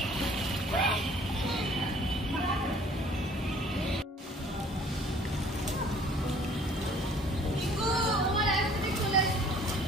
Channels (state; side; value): normal; both; correlation 0.55